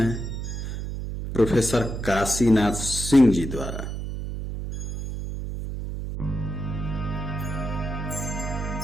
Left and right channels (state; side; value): noise; right; hum, 5 dB below the sound